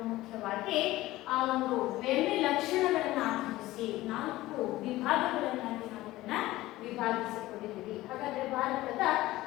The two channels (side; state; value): right; quieter; 17.2 dB